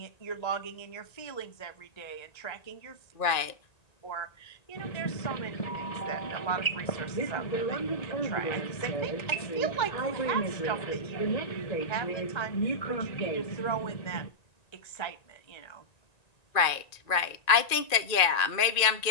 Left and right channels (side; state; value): right; late; 1.9 ms